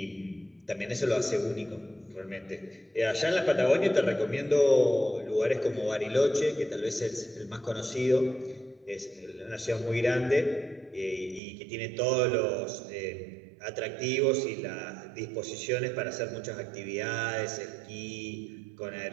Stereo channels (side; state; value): left; drops out; at 11.4 s